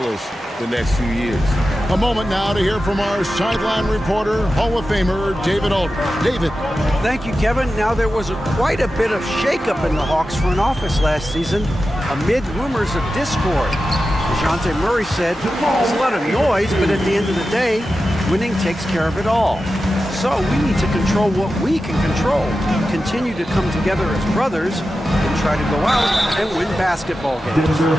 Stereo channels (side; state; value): both; normal; correlation 0.92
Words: the next few years. A moment now to hear from our sideline reporter, Hall of Famer David Aldridge. David. Thank you, Kevin. Now, there was quite a bit of shakeup in the Hawks front office last season amid rumors of discord. DeJounte Murray said, there's a lot of noise, but at the end of the day, winning takes care of it all. So we need to control what we can control, continue to come together as brothers, and try to go out and win basketball games.